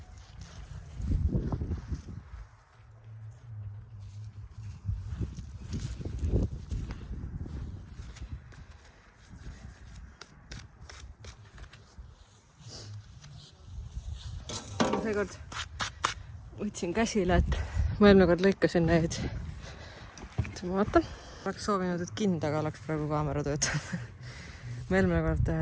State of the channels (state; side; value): identical; both; correlation 1.00